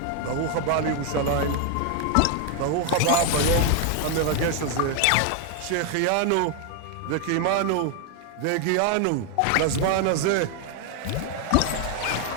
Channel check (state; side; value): different; both; correlation 0.01